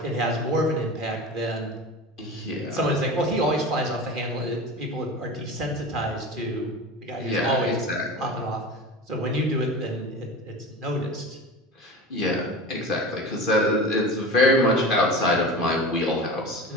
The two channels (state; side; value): normal; both; correlation 0.31